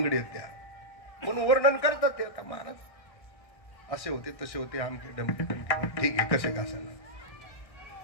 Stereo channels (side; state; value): right; late; 1.7 ms